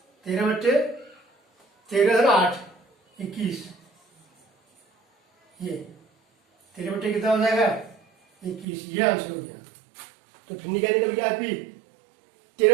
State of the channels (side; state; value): left; drops out; at 8.7 s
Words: 13 बट्टे 13 धन 8 21, ये 13 बट्टे कितना हो जाएगा? 21, ये आंसर हो गया। तो भिन्न क्या निकल गया आपकी?